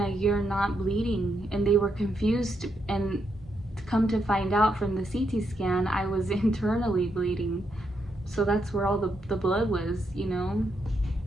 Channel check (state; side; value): normal; both; correlation 0.80